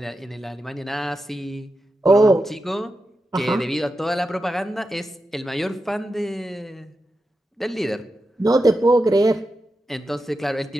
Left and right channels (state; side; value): normal; both; correlation 0.89